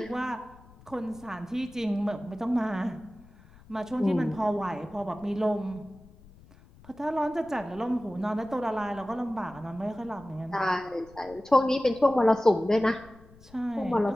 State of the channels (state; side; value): noise; left; rumble, 24 dB below the sound